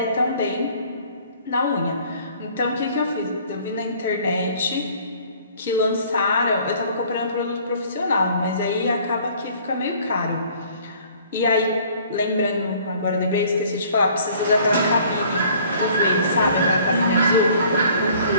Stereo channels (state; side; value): inverted; both; correlation -0.55